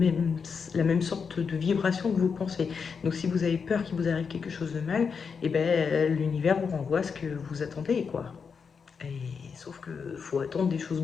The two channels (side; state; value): right; quieter; 5.9 dB